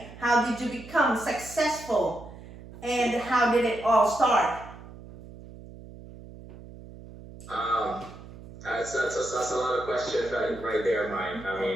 How did you become successful? And how did it all start? That's a lot of questions right there, Mike. I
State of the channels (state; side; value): noise; right; hum, 16 dB below the sound